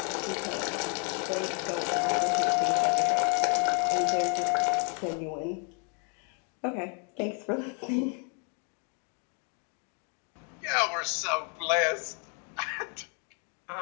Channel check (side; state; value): right; quieter; 38.9 dB